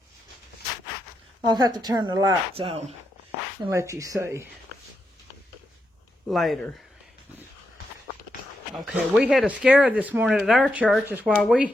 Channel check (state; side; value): normal; both; correlation 0.84